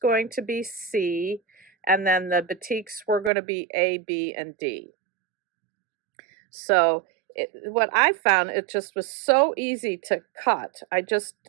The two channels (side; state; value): left; drops out; at 3.3 s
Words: to be C, and then the batiks were going to be A, B, and D. So what I found, it just was so easy to cut. I just